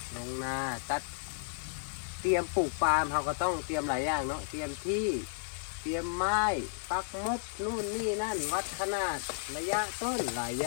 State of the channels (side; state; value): right; silent; digital silence